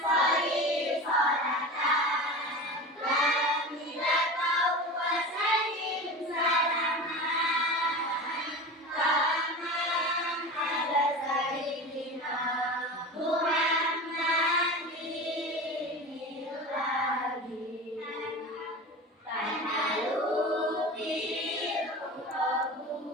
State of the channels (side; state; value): both; normal; correlation 0.30